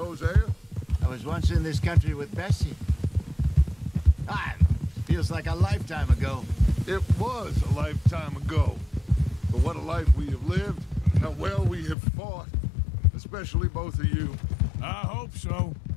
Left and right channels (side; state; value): right; drops out; at 12.0 s